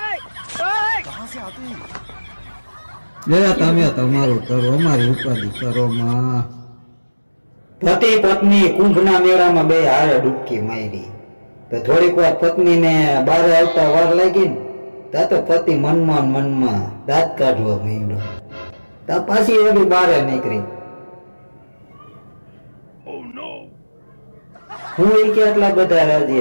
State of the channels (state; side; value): inverted; both; correlation -1.00